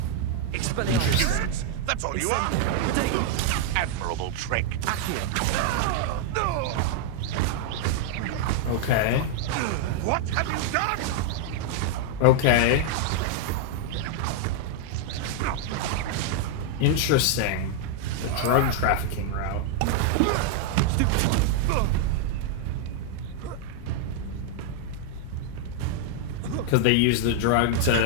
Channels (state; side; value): different; both; correlation 0.00